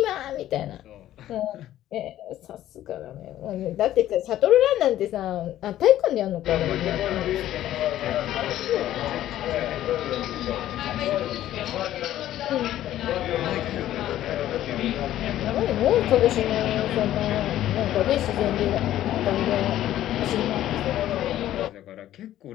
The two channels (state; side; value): quieter; right; 13.0 dB